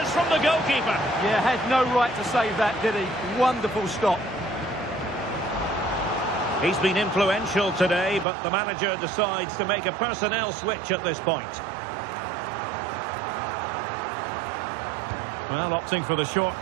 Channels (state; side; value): drops out; left; at 8.2 s